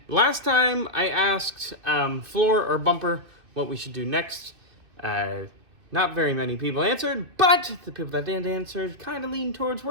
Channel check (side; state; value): left; late; 2.6 ms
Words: last time I asked Floor or Bumper what we should do next. Not very many people answered, but the people that did answer kind of leaned towards